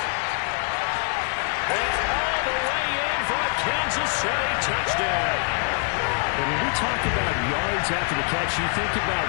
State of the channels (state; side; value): quieter; right; 39.3 dB